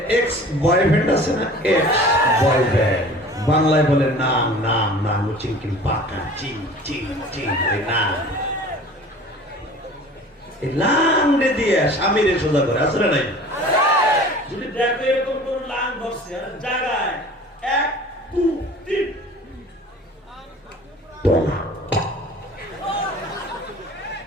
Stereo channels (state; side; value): normal; both; correlation 0.44